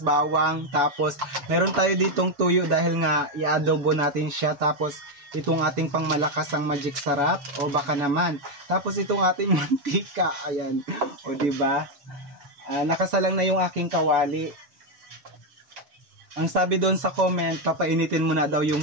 tapos meron tayo ditong tuyo dahil nga i-adobo natin siya. Tapos itong ating pangmalakas ang magic sarap, o baka naman. Tapos itong ating mantika, ayan. O diba? Nakasalang na yung aking kawali. Ang sabi doon sa comment, papainitin mo na daw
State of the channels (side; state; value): left; late; 7.0 ms